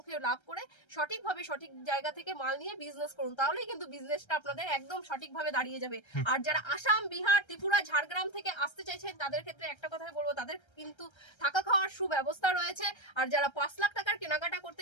লাভ করে সঠিকভাবে সঠিক জায়গা থেকে মাল নিয়ে বিজনেস করুন তাহলেই কিন্তু বিজনেসটা আপনাদের একদম সঠিকভাবে দাঁড়িয়ে যাবে। আর যারা আসাম বিহার ত্রিপুরা ঝাড়গ্রাম থেকে আসতে চাইছেন তাদের ক্ষেত্রে একটা কথাই বলবো তাদের কিন্তু থাকা খাওয়ার সুব্যবস্থা রয়েছে। আর যারা 5 লাখ টাকার কেনাকাটা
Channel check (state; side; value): late; right; 1.3 ms